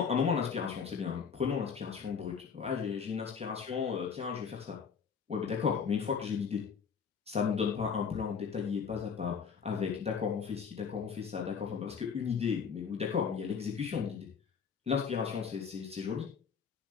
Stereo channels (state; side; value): quieter; right; 6.4 dB